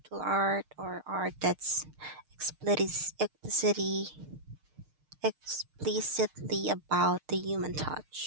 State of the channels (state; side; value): late; left; 6.6 ms